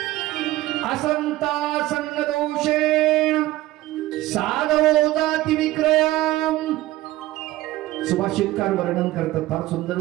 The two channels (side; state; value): left; quieter; 16.9 dB